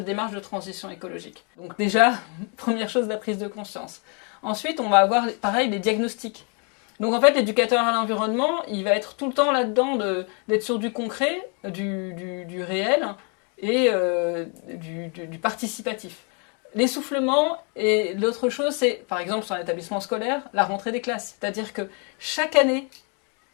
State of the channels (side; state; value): right; quieter; 36.7 dB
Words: démarche de transition écologique. Donc déjà, première chose, la prise de conscience. Ensuite, on va avoir, pareil, les diagnostics. Donc en fait, l'éducateur à l'environnement, il va être tout le temps là-dedans d'être sur du concret, du réel et du participatif. L'essoufflement, et l'autre chose, c'est, par exemple, sur un établissement scolaire, la rentrée des classes. C'est-à-dire que chaque année,